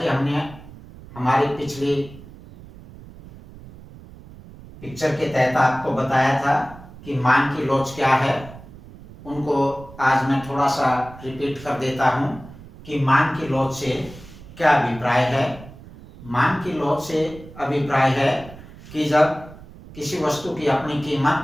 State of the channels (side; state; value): right; noise; rumble, 18 dB below the sound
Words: हमने हमारी पिछली पिक्चर के तहत आपको बताया था कि मांग की लॉज क्या है, उनको आज मैं थोड़ा सा रिपीट कर देता हूं कि मांग की लॉज से क्या अभिप्राय है। मांग की लॉज से अभिप्राय है कि जब किसी वस्तु की अपनी